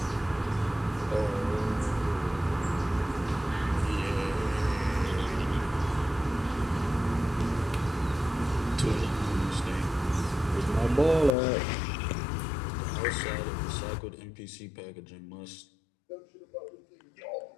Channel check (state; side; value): drops out; right; at 11.3 s